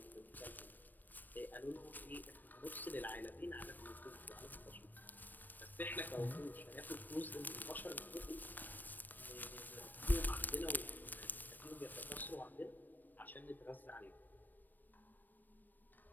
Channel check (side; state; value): right; late; 0.090 ms